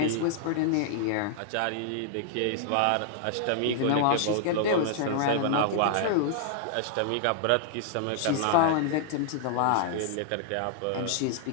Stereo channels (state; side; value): different; both; correlation -0.01